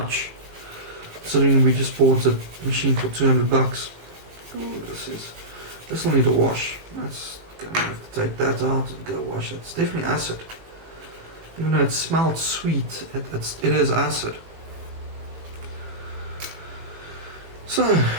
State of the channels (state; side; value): late; left; 18 ms